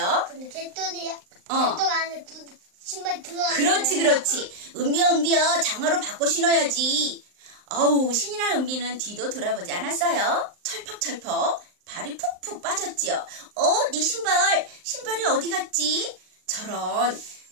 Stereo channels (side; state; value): left; late; 39 ms